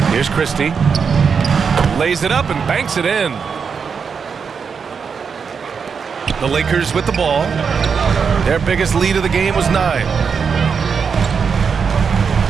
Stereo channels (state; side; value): quieter; left; 6.1 dB